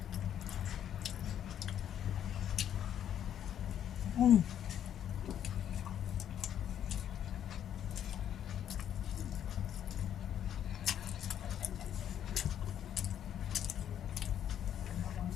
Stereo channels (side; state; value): right; quieter; 9.9 dB